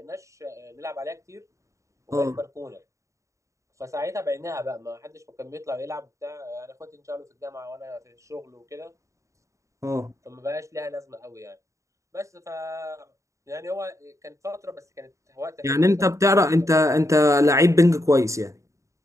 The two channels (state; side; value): late; left; 0.15 ms